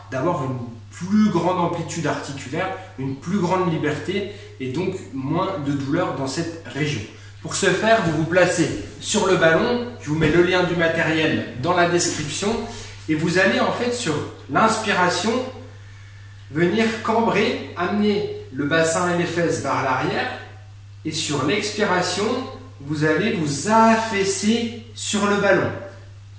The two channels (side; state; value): both; identical; correlation 1.00